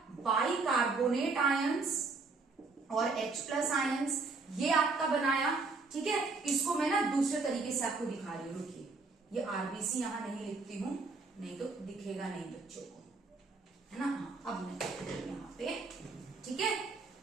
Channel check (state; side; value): quieter; left; 4.0 dB